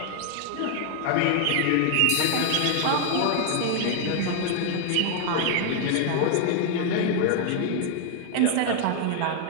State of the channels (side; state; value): both; different; correlation 0.00